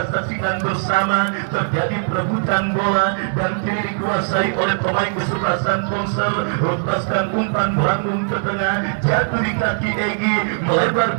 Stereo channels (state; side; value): silent; left; digital silence